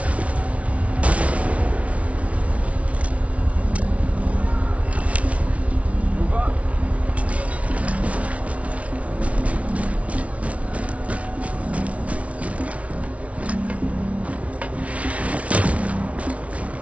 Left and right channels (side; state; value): left; late; 0.064 ms